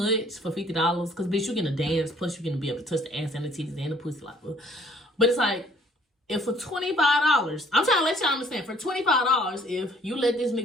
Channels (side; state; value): both; normal; correlation 0.59